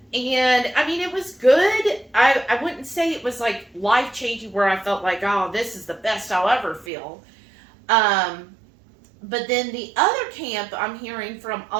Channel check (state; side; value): drops out; left; at 6.9 s